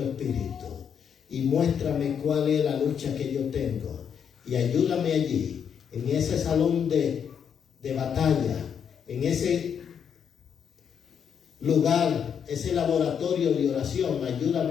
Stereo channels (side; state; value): right; quieter; 7.7 dB